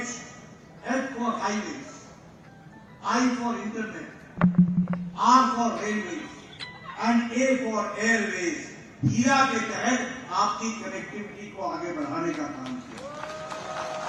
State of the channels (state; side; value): identical; both; correlation 1.00